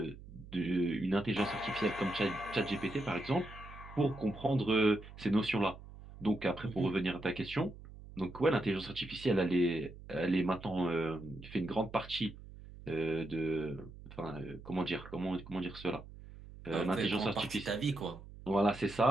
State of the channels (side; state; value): right; noise; hum, 16 dB below the sound